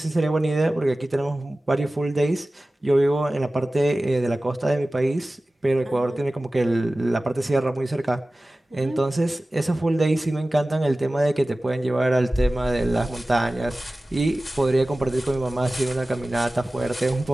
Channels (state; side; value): normal; both; correlation 0.97